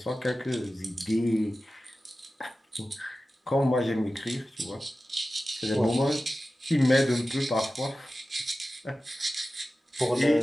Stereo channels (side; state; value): both; normal; correlation 0.95